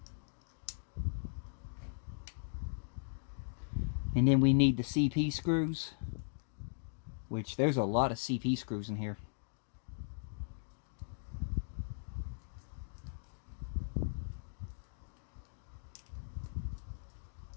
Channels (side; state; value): right; silent; digital silence